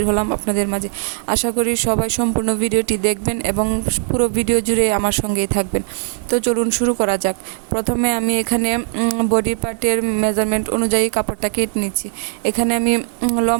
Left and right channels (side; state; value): left; silent; 63 dB below the other